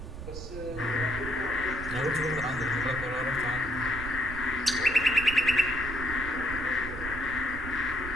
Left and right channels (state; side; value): noise; right; rumble, 10 dB below the sound